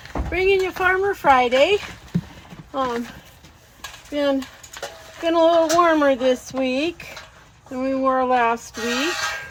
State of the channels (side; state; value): both; identical; correlation 1.00